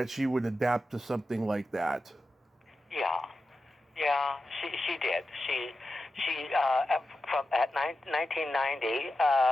she would adapt to something like that. Yeah, she did. She from at 1990,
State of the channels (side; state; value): both; normal; correlation 0.91